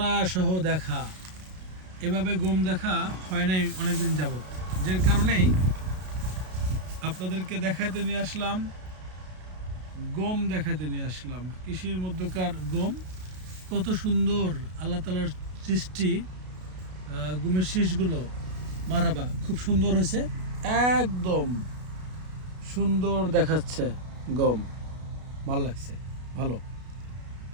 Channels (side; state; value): left; late; 33 ms